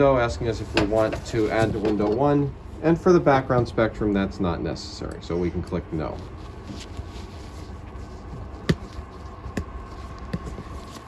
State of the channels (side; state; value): both; identical; correlation 1.00